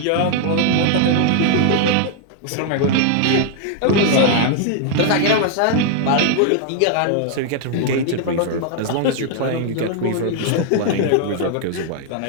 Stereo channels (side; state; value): both; different; correlation 0.00